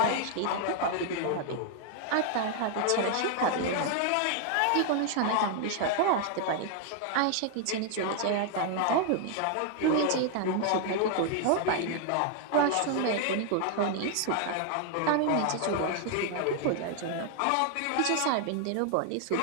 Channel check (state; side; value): different; both; correlation 0.00